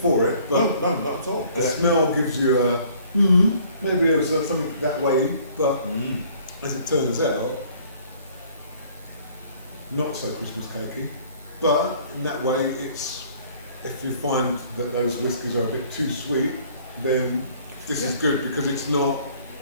it, but no, not at all. The smell gives you a maybe there was something that way, but as it turns out, not so Christmas cakey. But in that way, it's if you find that those whiskies are a bit too sweet, then this is good because it's not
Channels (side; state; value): both; inverted; correlation -0.56